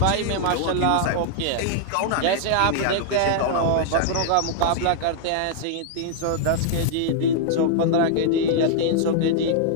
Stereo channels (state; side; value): different; both; correlation -0.01